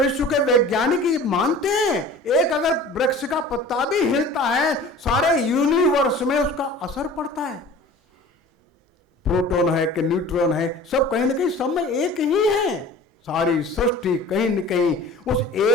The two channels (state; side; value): normal; both; correlation 0.42